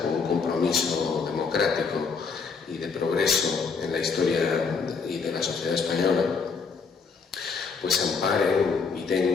un compromiso democrático y de progreso en la historia y de la sociedad española, pues amparen y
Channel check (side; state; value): right; quieter; 5.1 dB